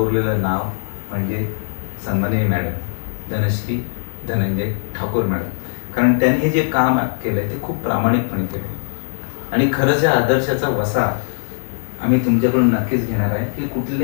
नाव म्हणजे सन्माननीय मॅडम धनश्री धनंजय ठाकूर मॅडम. कारण त्यांनी हे जे काम केलंय ते खूप प्रामाणिकपणे केलं. आणि खरंच या आदर्शाचा वसा आम्ही तुमच्याकडून नक्कीच घेणार आहे की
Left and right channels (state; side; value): silent; right; 57 dB below the other